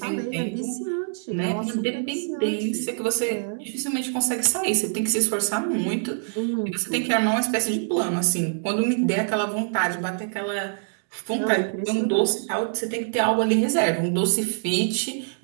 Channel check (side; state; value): left; silent; 62 dB below the other